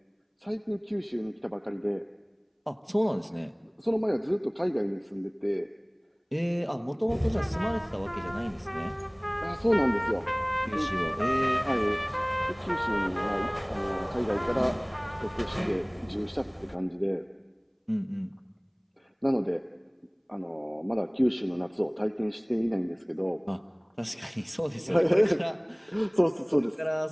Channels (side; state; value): both; identical; correlation 1.00